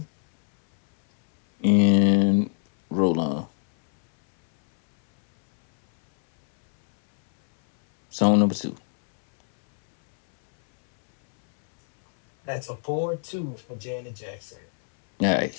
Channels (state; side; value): silent; right; 63 dB below the other